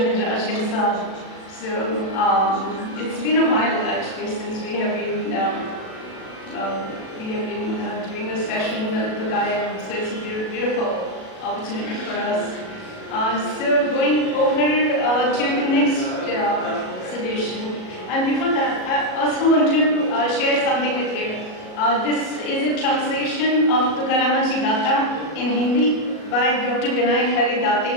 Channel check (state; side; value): late; right; 37 ms